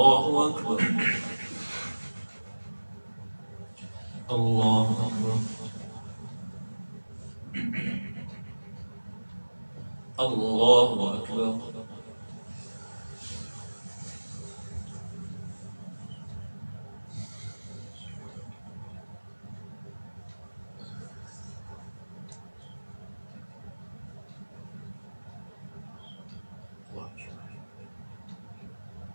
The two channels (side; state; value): both; inverted; correlation -1.00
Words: أكبر. الله أكبر. الله أكبر.